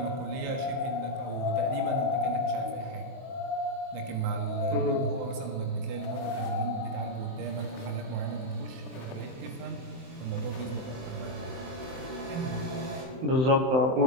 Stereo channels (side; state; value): left; late; 23 ms